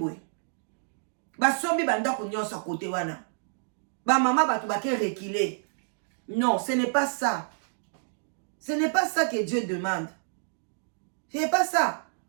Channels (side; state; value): left; silent; digital silence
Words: ba sombi banda ko nyonsa kote wana ba mama batu ba ke reculer. Non, ce n'est pas ça. Ce n'est pas ça que Dieu demande. Ce n'est pas ça.